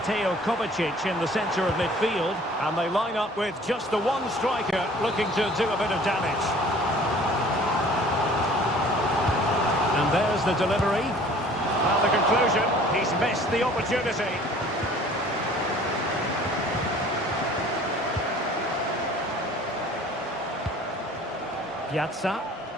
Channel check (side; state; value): both; normal; correlation 0.50